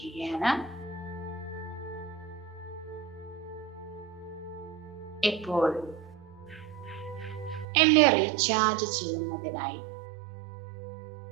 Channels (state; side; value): drops out; left; at 7.7 s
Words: ഇപ്പോൾ എന്നെ റീചാർജ് ചെയ്യുന്നതിനായി